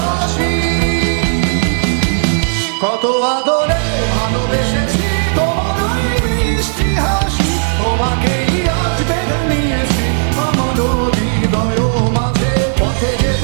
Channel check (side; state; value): left; silent; digital silence